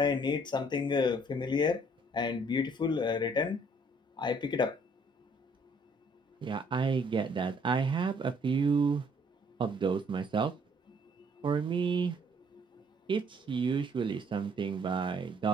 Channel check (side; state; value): both; normal; correlation 0.63